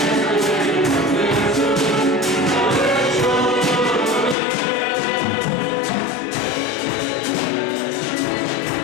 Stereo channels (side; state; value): right; drops out; at 4.4 s